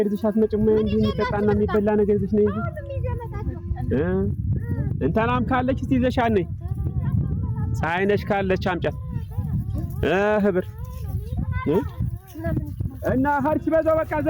ይዘሽ አትመጭም? እንዲህ የሚጠጣና የሚበላ ነገር ይዘሽ ነው እንጂ እንተናም ካለች እስቲ ይዘሻት ነይ። ፀሐይነሽ ካለች አምጫት። ህብር እና ሀርሽ በዛው በቃ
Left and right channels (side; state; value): both; identical; correlation 1.00